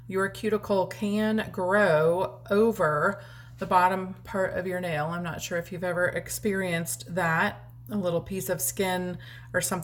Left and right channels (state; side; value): identical; both; correlation 1.00